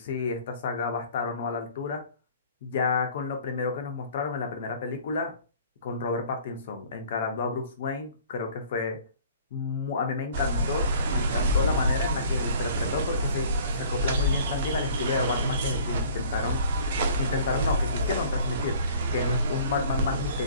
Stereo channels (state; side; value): inverted; both; correlation -0.51